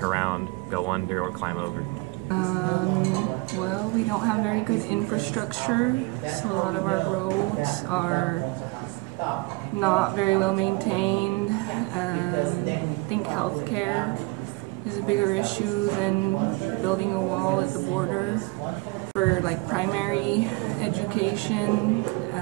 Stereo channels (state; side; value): quieter; left; 25.4 dB